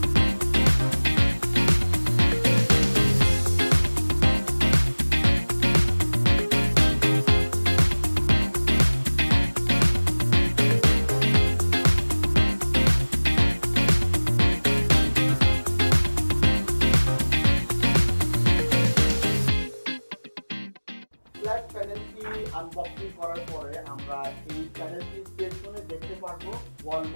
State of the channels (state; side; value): inverted; both; correlation -1.00